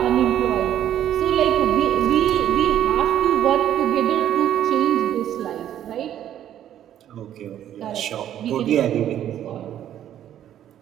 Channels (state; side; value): quieter; left; 11.0 dB